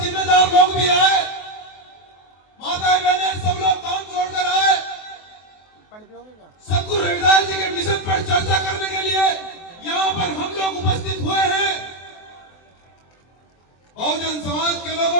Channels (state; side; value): late; right; 23 ms